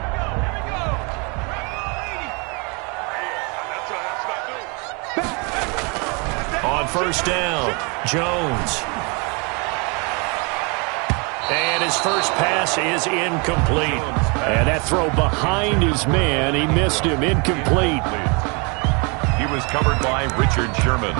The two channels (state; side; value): quieter; left; 32.1 dB